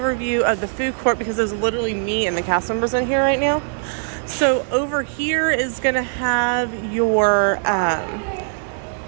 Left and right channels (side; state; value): left; silent; digital silence